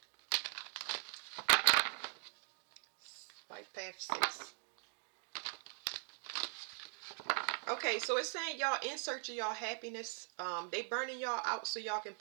Life Path 6. Okay, so it's saying y'all in search of y'all happiness. They burning y'all out so y'all can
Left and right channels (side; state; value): left; silent; 50 dB below the other